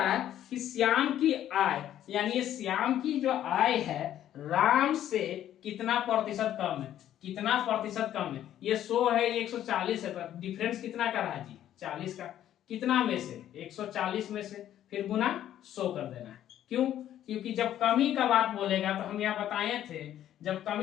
है कि श्याम की आय, यानी ये श्याम की जो आय है राम से कितना प्रतिशत कम है? कितना प्रतिशत कम है? ये 100 है, ये 140 है, तो डिफरेंस कितना का रहा जी? 40 का। कितना में से? 140 में से, फिर गुना 100 कर देना है। क्यों? क्योंकि जब कमी का बात बोलेगा तो हम यहाँ बताए थे, जब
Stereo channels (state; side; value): quieter; right; 11.6 dB